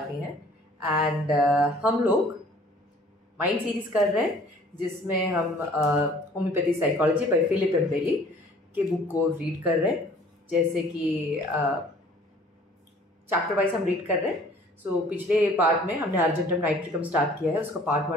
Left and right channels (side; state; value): both; normal; correlation 0.53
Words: है एंड हम लोग माइंड सीरीज कर रहे हैं जिसमें हम होम्योपैथी साइकोलॉजी बाय फिलिप एम्बेली के बुक को रीड कर रहे हैं। जैसे कि चैप्टर वाइज हम रीड कर रहे हैं। सो पिछले पार्ट में हमने अर्जेंटम नाइट्रिकम स्टार्ट किया है, उसका पार्ट